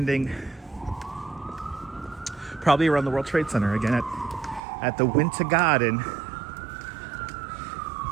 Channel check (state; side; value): drops out; left; at 4.6 s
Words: probably around the World Trade Center again at the Winter Garden.